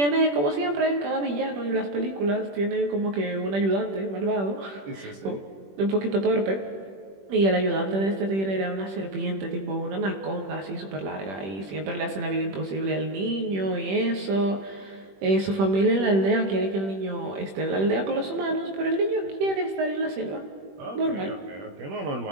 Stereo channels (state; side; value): late; left; 21 ms